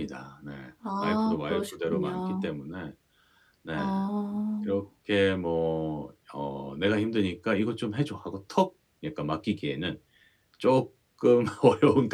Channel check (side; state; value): both; identical; correlation 1.00